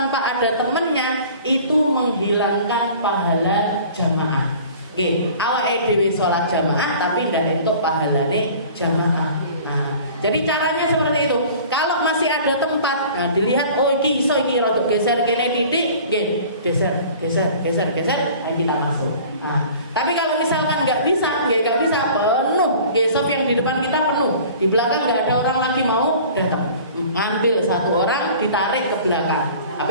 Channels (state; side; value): inverted; both; correlation -0.45